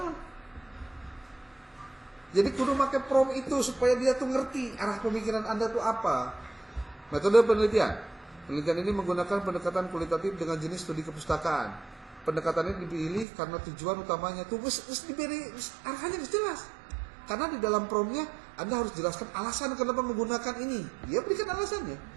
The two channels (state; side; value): drops out; left; at 13.2 s